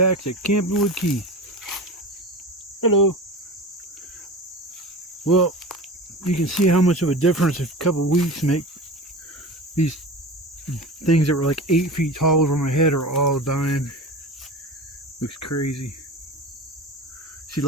to Camping with Keith. Hello. Well, you can see how much of a difference a couple weeks make. These things that were like 8 feet tall over my head are all dying. Looks crazy. See,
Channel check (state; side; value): normal; both; correlation 0.31